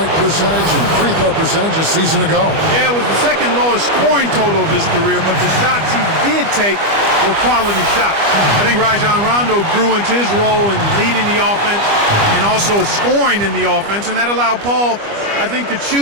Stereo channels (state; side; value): late; left; 25 ms